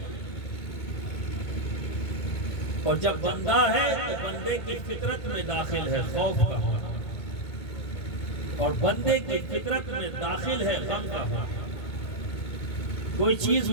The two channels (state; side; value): late; right; 1.7 ms